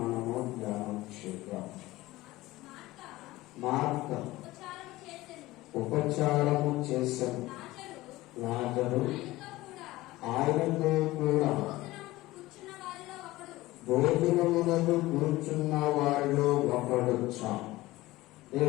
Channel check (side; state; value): right; quieter; 18.3 dB